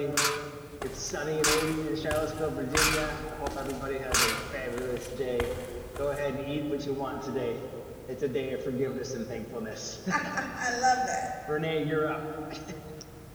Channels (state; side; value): identical; both; correlation 1.00